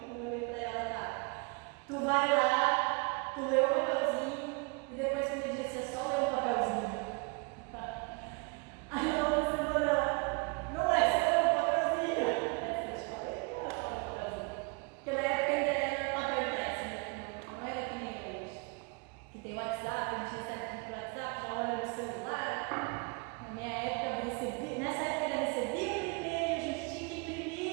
Eu olhei para ela: tá. Tu vai lá, tu lê o papelzinho e depois tu me disse: é só ler o papelzinho.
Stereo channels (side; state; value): left; quieter; 31.1 dB